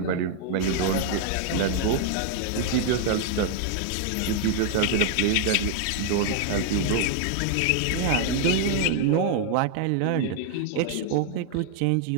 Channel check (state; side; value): different; both; correlation 0.00